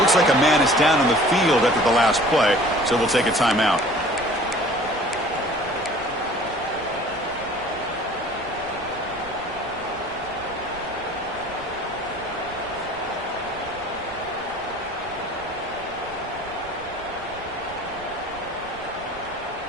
like a man is down on the field after the last play, so we'll take a timeout.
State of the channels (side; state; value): right; noise; rumble, 21 dB below the sound